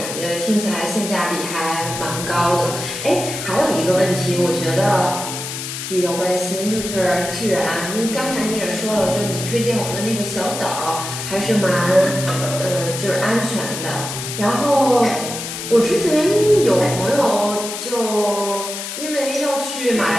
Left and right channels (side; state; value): left; noise; hiss, 7 dB below the sound